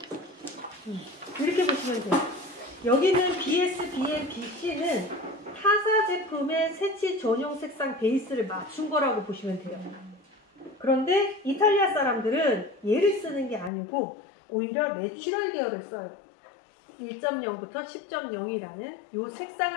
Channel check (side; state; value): right; drops out; at 13.7 s